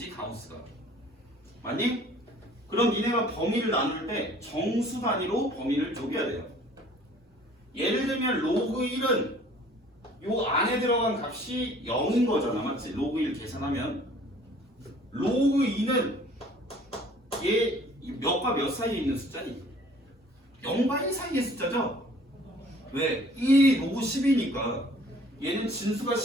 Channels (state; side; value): normal; both; correlation 0.53